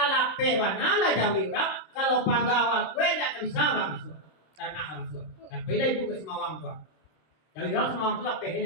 pewana lah jawi orang kalau pagawa kue tak bisa bang masuk. Tak nak masuk. Tapi dah ibu ke semawang tu. Jawi orang semawang tu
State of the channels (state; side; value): late; right; 26 ms